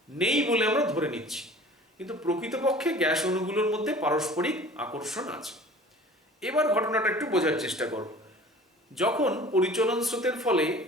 নেই বলে আমরা ধরে নিচ্ছি, কিন্তু প্রকৃতপক্ষে গ্যাস অণুগুলোর মধ্যে পারস্পরিক আকর্ষণ আছে। এবার ঘটনাটা একটু বোঝার চেষ্টা করো। যখন পরিচলন স্রোতের ফলে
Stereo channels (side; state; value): both; normal; correlation 0.44